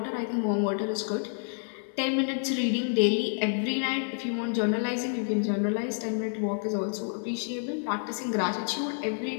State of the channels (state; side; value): silent; right; 59 dB below the other